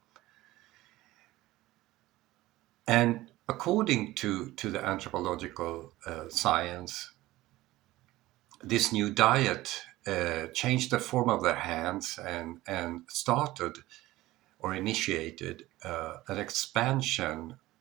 And according to the anthropological science, this new diet changed the form of their hands and started or initiated an expansion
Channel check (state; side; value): quieter; left; 17.4 dB